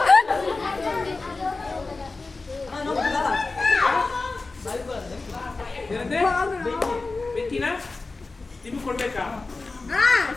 ಬೆಕ್ಕಿನ ನಿಮ್ಗೆ ಕೊಡ್ಬೇಕಾ?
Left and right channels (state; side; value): quieter; right; 3.7 dB